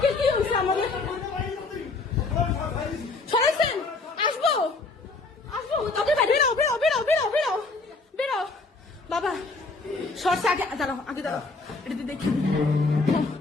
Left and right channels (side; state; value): right; quieter; 3.6 dB